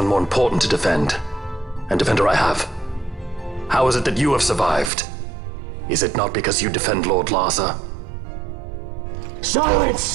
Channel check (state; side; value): drops out; left; at 4.9 s